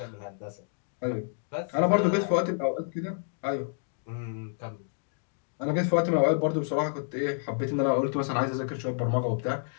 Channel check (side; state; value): right; silent; digital silence